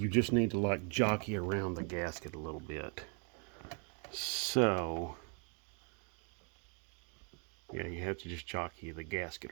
just need to like jockey around the gasket a little bit. So yeah, you have to just jockey the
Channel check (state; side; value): quieter; left; 39.8 dB